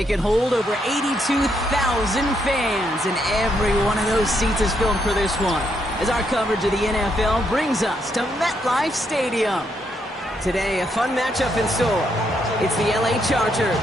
can hold over 82,000 fans, and every one of those seats is filled for this one, as our coverage of the NFL brings us to MetLife Stadium. Today, a fun matchup in store. It's the LA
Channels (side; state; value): both; normal; correlation 0.76